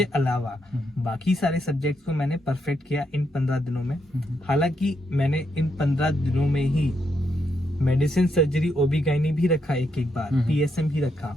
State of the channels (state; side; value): normal; both; correlation 0.79